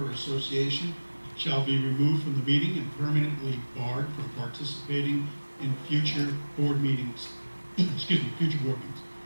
or association shall be removed from the meeting and permanently barred from participating in future board meetings. Future board meetings.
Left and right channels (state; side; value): inverted; both; correlation -1.00